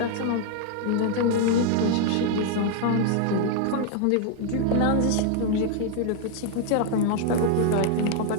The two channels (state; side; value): different; both; correlation 0.00